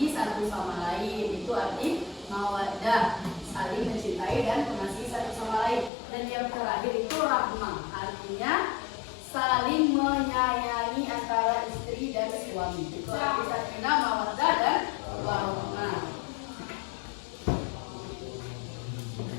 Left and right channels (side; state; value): right; drops out; at 5.9 s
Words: satu sama lain. Itu arti mawadah. Saling mencintai dan mengasihi satu sama lain. Dan yang terakhir itu rahmah, artinya saling menyayangi antara istri dan suami. Itu arti sakinah, mawaddah dan warahmah.